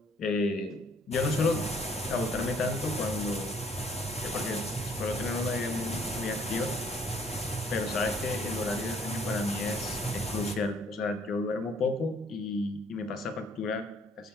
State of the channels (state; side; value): normal; both; correlation 0.62